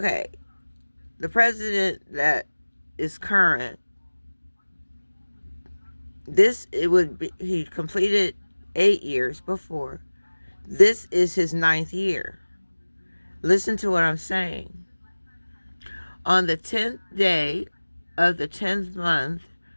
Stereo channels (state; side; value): inverted; both; correlation -1.00